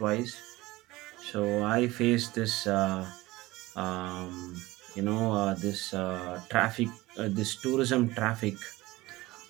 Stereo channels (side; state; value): left; quieter; 19.5 dB